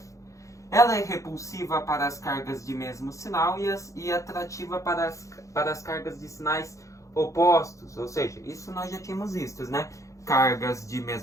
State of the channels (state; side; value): late; right; 0.15 ms